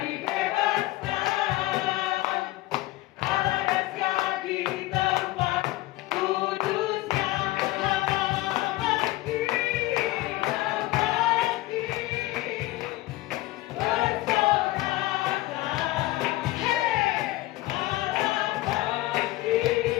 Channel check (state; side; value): quieter; right; 18.2 dB